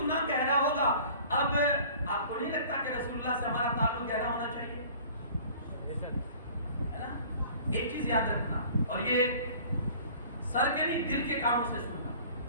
گہرا ہوگا۔ اب آپ کو نہیں لگتا کہ رسول اللہ سے ہمارا تعلق گہرا ہونا چاہیے؟ ہے نا؟ ایک چیز یاد رکھنا، اور یہ سر کے نہیں دل کے کاموں سے سننا،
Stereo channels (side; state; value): both; inverted; correlation -0.48